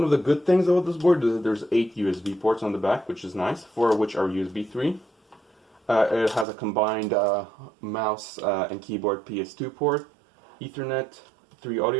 of the good things about this board is that there's 8 USB ports on the back, which is nice, 4 of which are USB 3. It has a combined mouse and keyboard PS2 port, Ethernet, 3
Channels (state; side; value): drops out; left; at 6.5 s